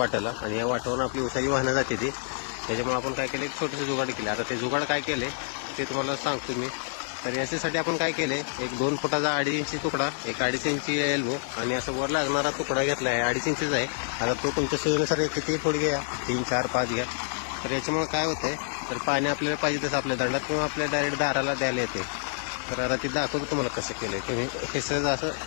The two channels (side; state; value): right; silent; digital silence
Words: आणि या वाटावरून आपली उसाची वाहनं जाते ती. त्याच्यामुळे आपण काय केलं, एक छोटंसं जुगाड केलं. आता ते जुगाड काय केले ते तुम्हाला सांगतो मी. तर याच्यासाठी आपण काय केले, एक 2 फुटाचा 2.5 इंची तुकडा, एक 2.5 इंची एल्बो, आणि असं वर लागणारा तुकडा घेतला आहे. 2.5 इंचीचा आहे. आता तो तुमच्या सोयीनुसार किती फूट घ्या, 3, 4, 5 घ्या. तर याच्यामुळे काय होतंय, तर पाणी आपल्याला पाहिजे तसं आपल्या दंडात किंवा आपल्या डायरेक्ट दाराला द्यायला येते. तर आता ते दाखवतो तुम्हाला कसं केलं आहे. तुम्ही हे सहज